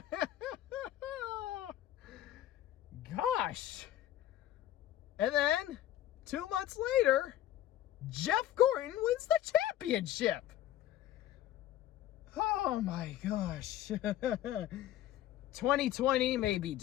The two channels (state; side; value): quieter; right; 12.7 dB